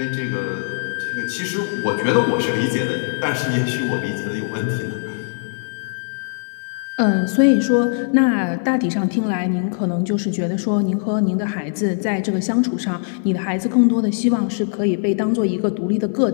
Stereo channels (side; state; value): right; silent; 62 dB below the other